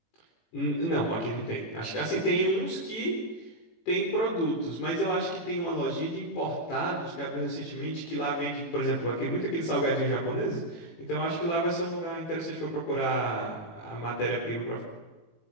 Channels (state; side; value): late; right; 18 ms